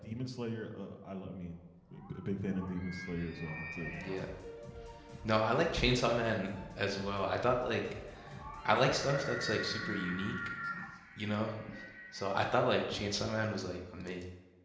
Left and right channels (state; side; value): identical; both; correlation 1.00